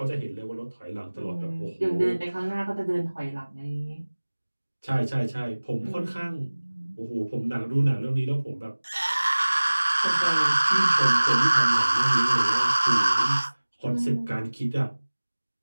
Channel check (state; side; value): inverted; both; correlation -1.00